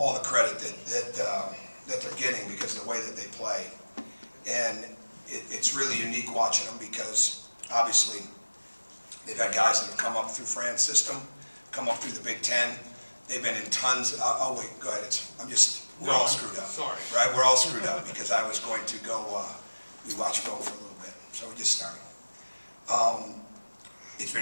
the credit that they're getting because of the way that they play. And it's really unique watching them because obviously they've had guys that have come up through Fran's system, come up through the Big Ten. They've been in tons. Oh wait, go ahead. We're all screwed up. Sorry. Right? We're all screwed up because I was going to go. We watched film for a little bit, so we just started. It's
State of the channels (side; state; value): both; inverted; correlation -1.00